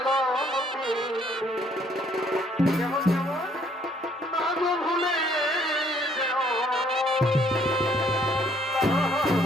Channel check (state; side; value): normal; both; correlation 0.64